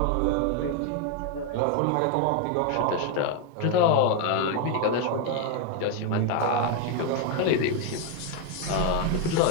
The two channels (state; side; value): different; both; correlation 0.01